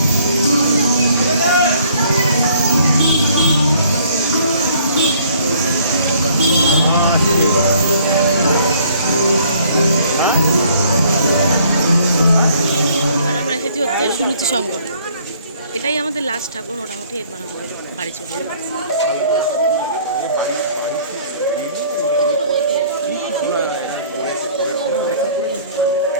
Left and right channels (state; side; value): inverted; both; correlation -0.59